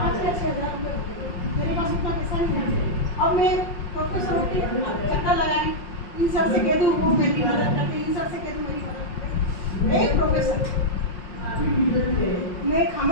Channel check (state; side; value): late; right; 5.5 ms